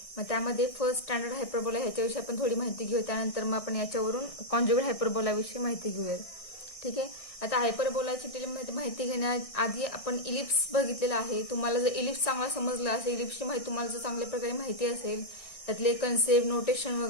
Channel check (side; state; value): right; late; 1.6 ms